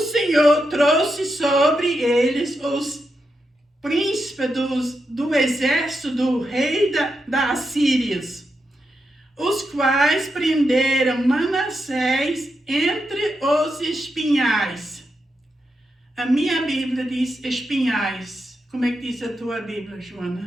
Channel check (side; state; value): both; normal; correlation 0.85